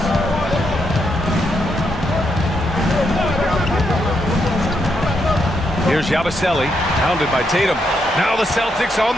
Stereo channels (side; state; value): both; normal; correlation 0.79